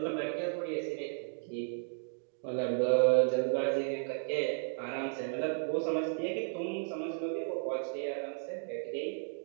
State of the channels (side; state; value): left; silent; digital silence